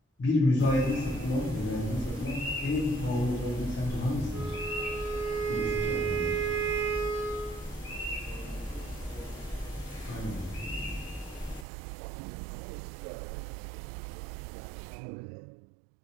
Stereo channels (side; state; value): left; drops out; at 11.7 s